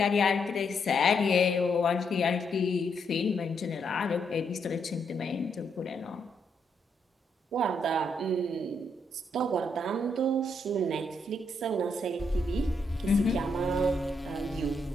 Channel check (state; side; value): normal; both; correlation 0.77